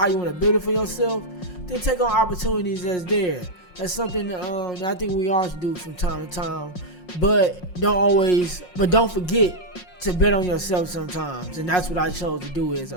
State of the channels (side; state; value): right; late; 5.5 ms